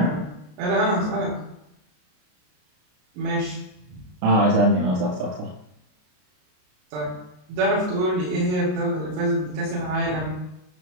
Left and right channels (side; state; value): left; late; 33 ms